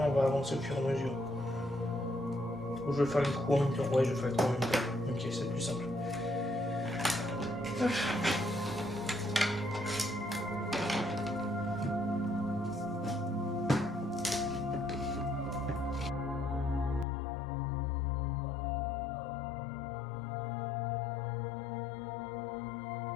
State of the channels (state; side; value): drops out; right; at 17.1 s